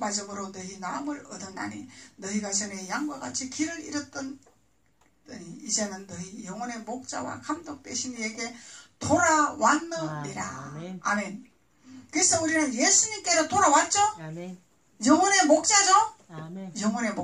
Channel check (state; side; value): identical; both; correlation 1.00